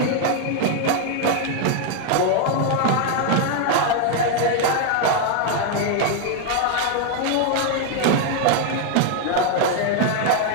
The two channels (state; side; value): different; both; correlation 0.00